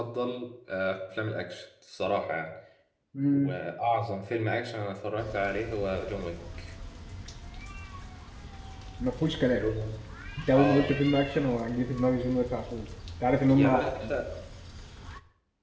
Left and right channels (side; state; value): both; identical; correlation 1.00